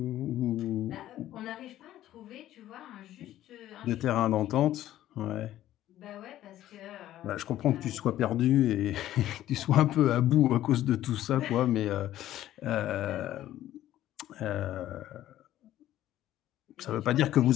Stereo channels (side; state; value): right; quieter; 13.4 dB